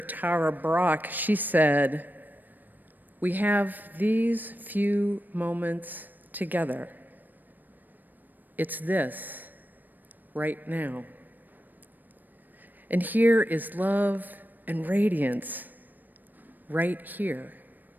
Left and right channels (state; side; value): late; left; 0.089 ms